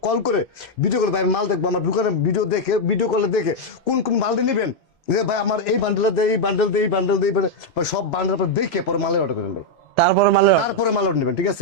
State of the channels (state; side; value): normal; both; correlation 0.00